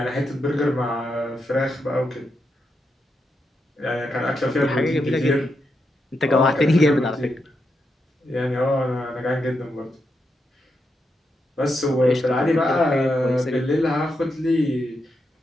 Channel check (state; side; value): normal; both; correlation 0.84